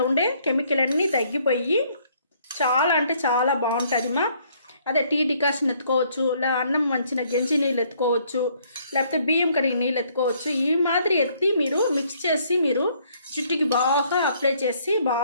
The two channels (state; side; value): inverted; both; correlation -0.65